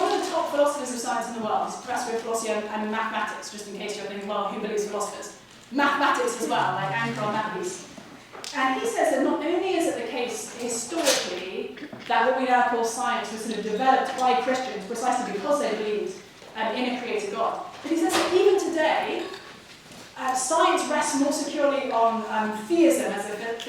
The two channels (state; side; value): identical; both; correlation 1.00